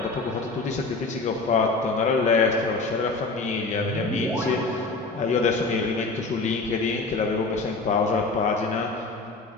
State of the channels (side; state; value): right; quieter; 3.6 dB